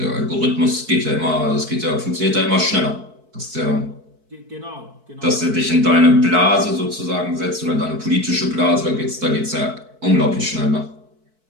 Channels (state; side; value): late; left; 4.6 ms